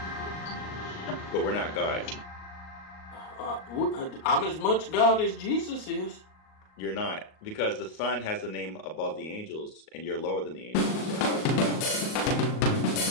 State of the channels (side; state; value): right; late; 38 ms